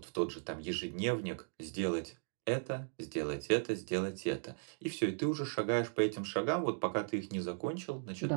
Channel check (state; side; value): silent; left; digital silence